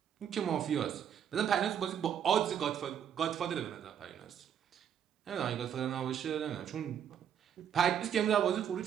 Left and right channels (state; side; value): quieter; left; 9.0 dB